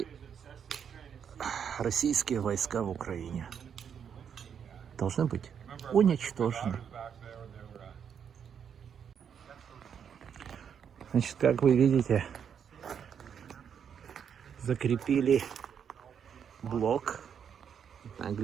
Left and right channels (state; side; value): quieter; left; 7.8 dB